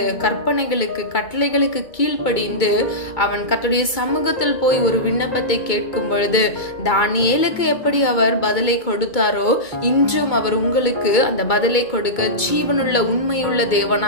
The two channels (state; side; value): late; right; 2.2 ms